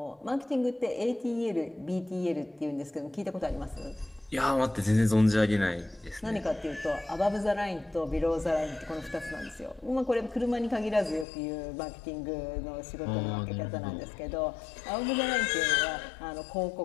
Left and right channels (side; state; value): right; drops out; at 11.2 s